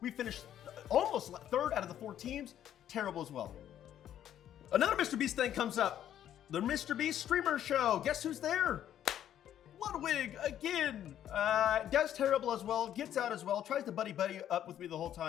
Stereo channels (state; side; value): quieter; right; 10.8 dB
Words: We finished almost third out of the 4 teams. Terrible as well. Another Mr. Beast thing comes up. The Mr. Beast streamer show. Guess who's there? Ludwig again. Does terrible as well. Gets out as well. Tries to buddy up with me the whole